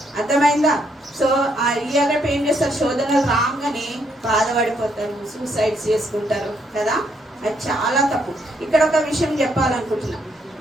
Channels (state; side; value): normal; both; correlation 0.73